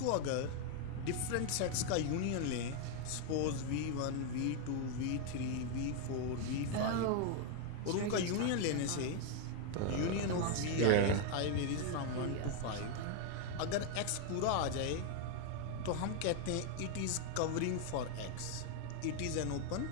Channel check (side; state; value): both; different; correlation 0.00